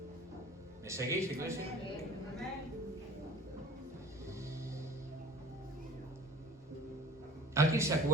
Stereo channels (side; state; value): both; normal; correlation 0.47